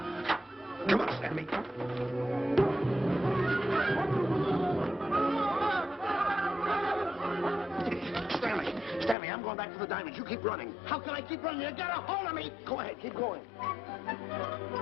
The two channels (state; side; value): drops out; right; at 9.2 s